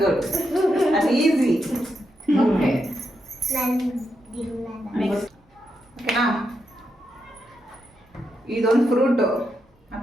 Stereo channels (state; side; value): normal; both; correlation 0.84